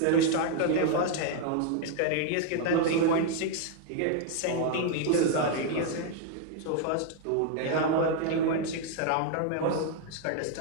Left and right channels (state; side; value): different; both; correlation 0.00